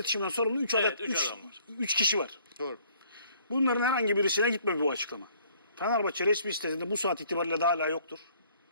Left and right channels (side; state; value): both; inverted; correlation -0.60